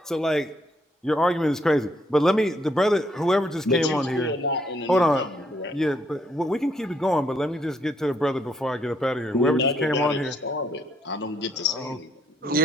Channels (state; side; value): normal; both; correlation 0.72